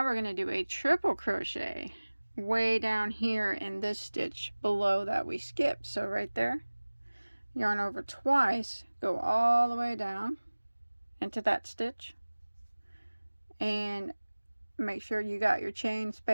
we're going to do a triple crochet way down here in this stitch below that we skipped. So right there, yarn over twice, go all the way down into that stitch, and make sure you got your chain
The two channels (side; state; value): both; inverted; correlation -1.00